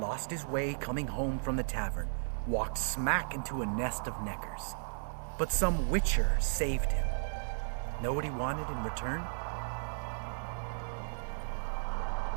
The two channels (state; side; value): silent; left; digital silence